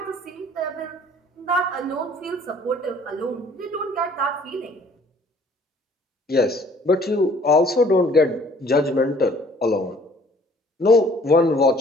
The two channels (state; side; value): normal; both; correlation 0.56